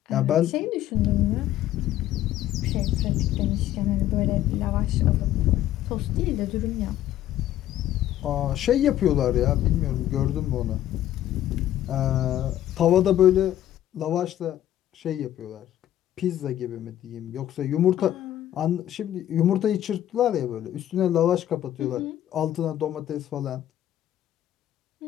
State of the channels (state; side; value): quieter; right; 12.4 dB